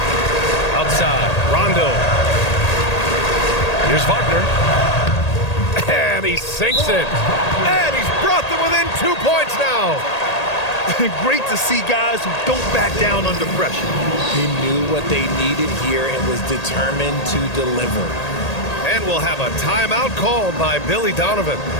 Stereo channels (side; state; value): right; late; 1.8 ms